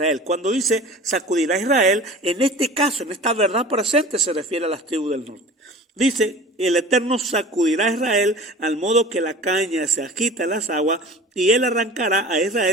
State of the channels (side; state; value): both; normal; correlation 0.40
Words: Cuando dice sacudirá a Israel, en este caso, en esta verdad presente, se refiere a las tribus del norte. Dice: el Eterno sacudirá a Israel al modo que la caña se agita en las aguas, y él arrancará a